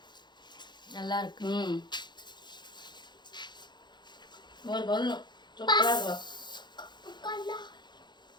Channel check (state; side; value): late; right; 0.21 ms